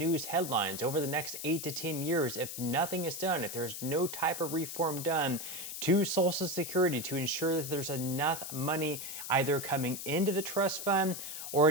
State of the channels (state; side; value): noise; left; hiss, 7 dB below the sound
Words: headlines, over the next 8 to 10 years, if nothing is done, if there's no type of reform done to Social Security to ensure that there's enough money either coming into the trust fund or